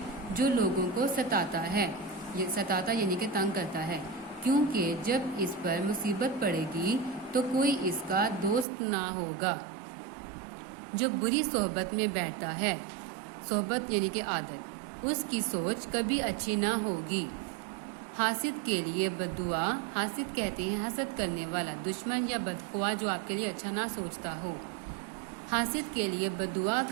جو لوگوں کو ستاتا ہے، یعنی کہ تنگ کرتا ہے، کیونکہ جب اس پر مصیبت پڑے گی تو کوئی اس کا دوست نہ ہوگا۔ جو بری صحبت میں بیٹھتا ہے، صحبت یعنی کہ عادت، اس کی سوچ کبھی اچھی نہ ہوگی۔ حاسد کے لیے بددعا، حاسد کہتے ہیں حسد کرنے والا، دشمن یا بدخواہ جو آپ کے لیے اچھا نہ سوچتا ہو۔ حاسد کے لیے بددعا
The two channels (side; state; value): left; drops out; at 8.7 s